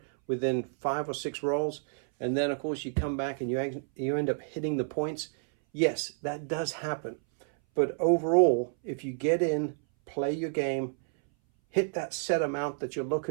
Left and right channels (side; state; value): left; silent; 58 dB below the other